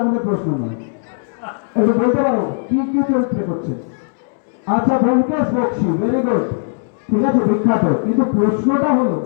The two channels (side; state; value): right; silent; digital silence